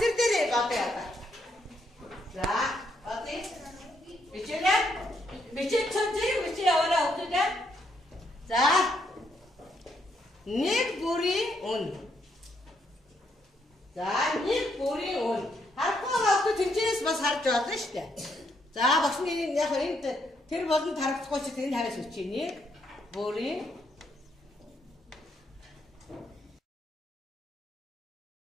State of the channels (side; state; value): both; normal; correlation 0.75